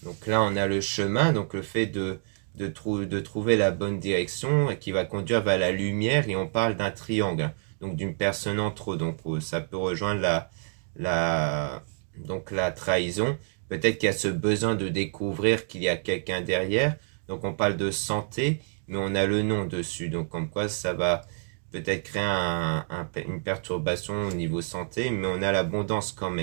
Donc là, on a le chemin, donc le fait de trouver la bonne direction qui va conduire vers la lumière, et on parle d'un triangle, donc d'une personne entre eux. Donc ça peut rejoindre donc la trahison. Peut-être qu'il y a ce besoin de découvrir qu'il y a quelqu'un derrière. Donc on parle de santé, mais on a le nom dessus. Donc comme quoi ça va peut-être créer une perturbation au niveau santé, mais on a l'abondance quand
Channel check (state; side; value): silent; left; 60 dB below the other